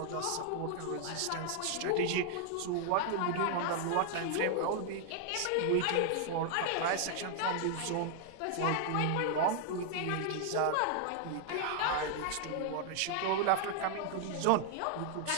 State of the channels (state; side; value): different; both; correlation 0.00